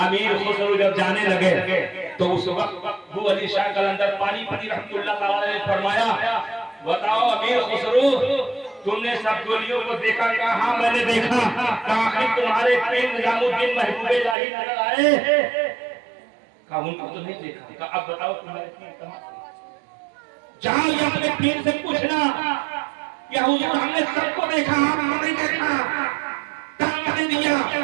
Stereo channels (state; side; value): drops out; left; at 14.4 s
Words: امیر خسرو جب جانے لگے تو اس وقت ابو علی شاہ قلندر پانی پتی رحمۃ اللہ تعالیٰ نے فرمایا بتاؤ امیر خسرو تم نے سب گولیوں کو دیکھا؟ کہا ہاں میں نے دیکھا۔ کہا تمہارے پیر نظام الدین محبوب الہی نظر آئے؟ کہا ان کو تو نہیں دیکھا۔ کہا اب بتاؤ تمہارے پیر کہاں؟ جاؤ یہ اپنے پیر سے پوچھنا کہ حضور ہم نے سب کو دیکھا آپ کو نہیں دیکھا، دھکا